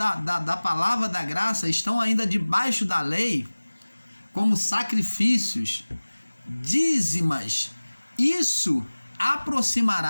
palavra da graça, estão ainda debaixo da lei, como sacrifícios, dízimas, isso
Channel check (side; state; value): both; inverted; correlation -1.00